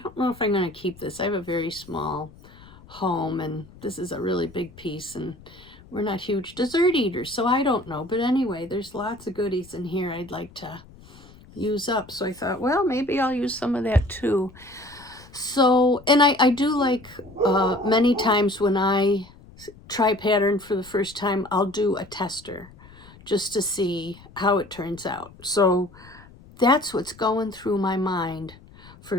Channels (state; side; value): noise; left; rumble, 22 dB below the sound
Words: know if I'm going to keep this. I have a very small home, and this is a really big piece, and we're not huge dessert eaters, so I don't know. But anyway, there's lots of goodies in here I'd like to use up. So I thought, well, maybe I'll use some of that too. So, and I do like many times when I try pattern for the first time, I'll do a tester just to see how it turns out. So that's what's going through my mind